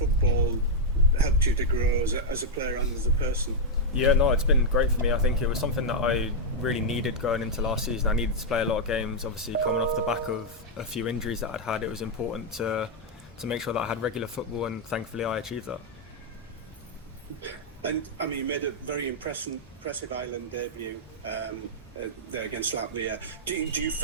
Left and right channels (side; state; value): both; normal; correlation -0.04